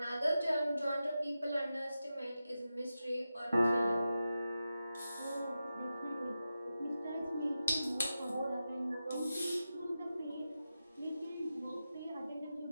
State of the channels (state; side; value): inverted; both; correlation -0.92